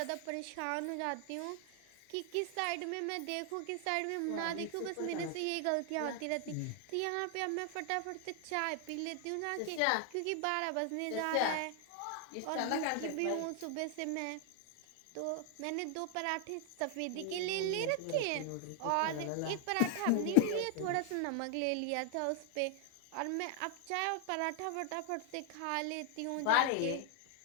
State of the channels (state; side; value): different; both; correlation 0.00